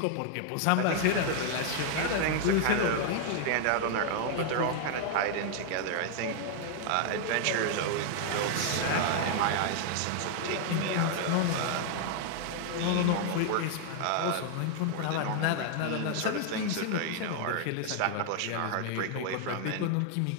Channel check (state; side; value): different; both; correlation 0.00